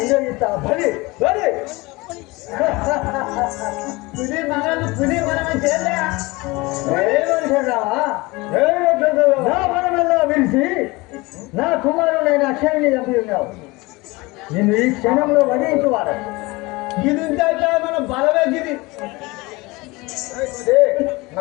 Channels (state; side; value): quieter; right; 23.1 dB